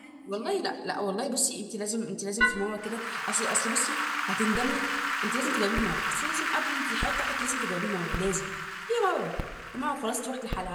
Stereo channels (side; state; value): both; identical; correlation 1.00